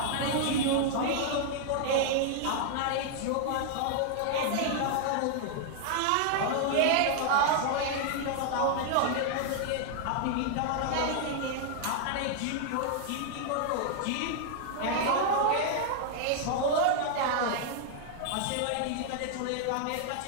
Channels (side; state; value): both; different; correlation 0.00